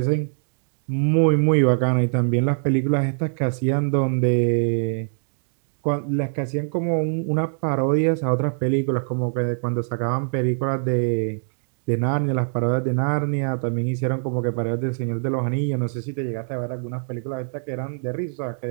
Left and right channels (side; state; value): left; silent; digital silence